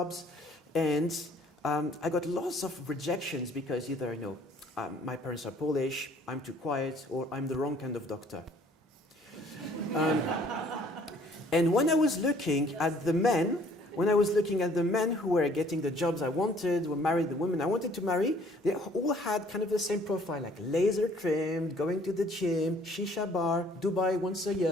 and I got lots of rejections because either, you know, my parents are Polish, I'm too quiet, or I'm the wrong kind of doctor. And when I was looking at the men, who were getting the jobs I wanted, who married the women I wanted to marry, they all had kind of the same profile, like laser trimmed, going to the gym, shisha bar, Dubai once a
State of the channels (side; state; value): both; normal; correlation 0.58